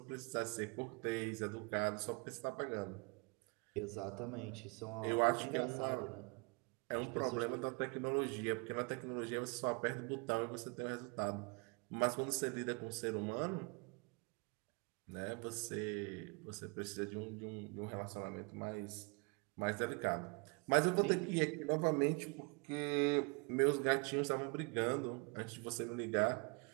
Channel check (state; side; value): quieter; left; 31.9 dB